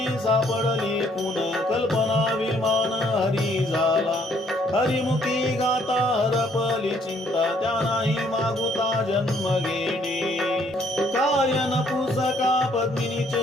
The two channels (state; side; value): normal; both; correlation 0.66